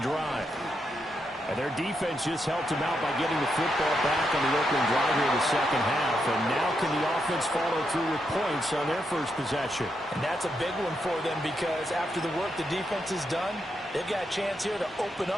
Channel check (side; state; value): both; normal; correlation 0.82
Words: drive. And their defense just helped them out by getting the football back on the opening drive here in the second half. And now can the offense follow through with points on their first possession? And that's a big one for them because after the work the defense has done, they've got a chance here to open